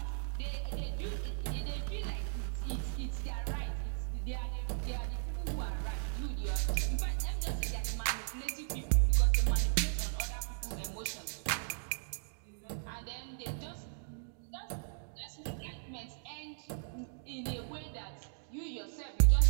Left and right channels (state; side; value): silent; left; digital silence